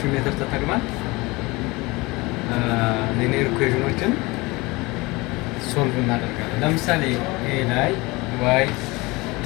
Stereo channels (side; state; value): right; quieter; 23.3 dB